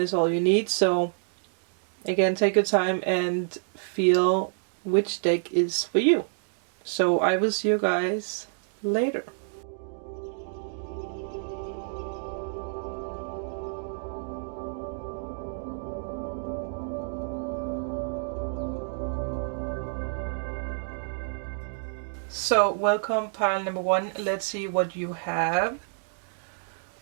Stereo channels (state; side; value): silent; left; digital silence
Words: all you need. So again, take your time and feel which deck is for you. So I will see you guys later. So welcome pile number 1. Let's see what you have.